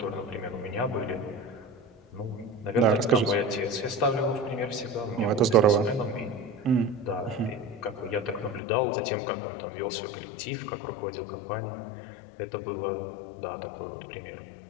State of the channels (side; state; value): right; drops out; at 8.6 s